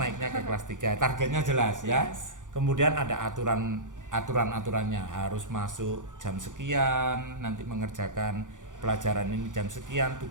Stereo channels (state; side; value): late; left; 0.87 ms